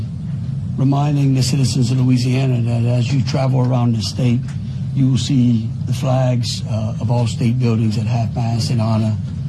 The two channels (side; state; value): both; identical; correlation 1.00